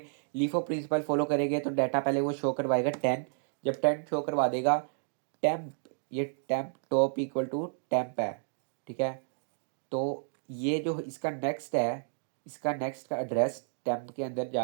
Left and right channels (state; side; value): silent; left; digital silence